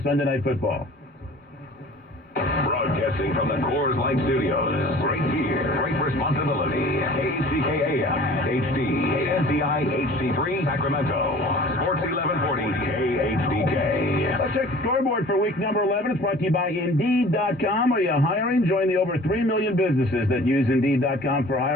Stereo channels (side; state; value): both; normal; correlation 0.46